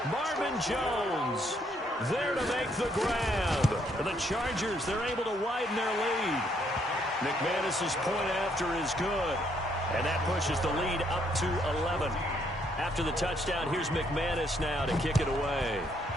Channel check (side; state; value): both; normal; correlation 0.71